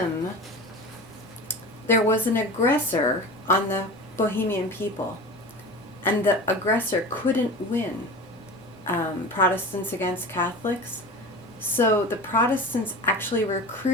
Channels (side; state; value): both; normal; correlation 0.33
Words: There was an aggressor on the Bohemian people, and the aggressor couldn't win. Protestants against Catholics. So the Protestants actually